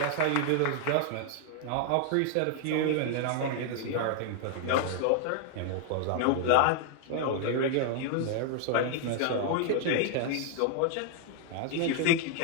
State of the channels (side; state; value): both; different; correlation 0.00